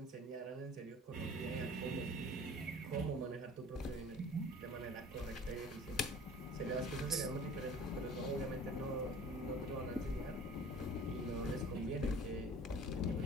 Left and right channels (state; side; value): normal; both; correlation 0.45